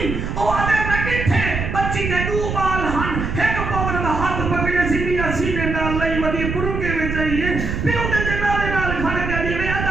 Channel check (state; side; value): noise; right; rumble, 3 dB below the sound